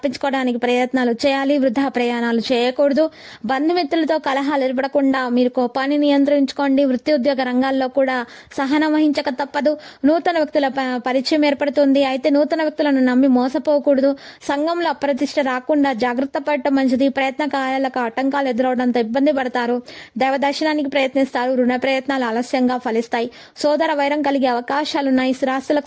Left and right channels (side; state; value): both; identical; correlation 1.00